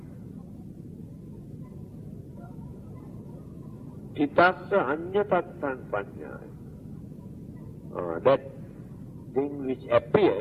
Thitassa anyatatan panyaya. That thing which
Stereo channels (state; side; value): identical; both; correlation 1.00